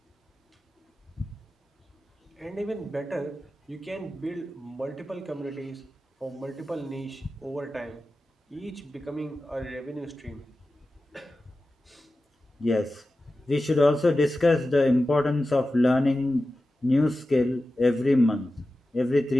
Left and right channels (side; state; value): both; normal; correlation 0.94